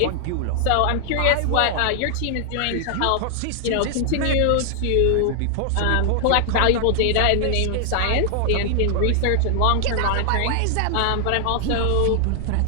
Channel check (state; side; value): different; both; correlation 0.00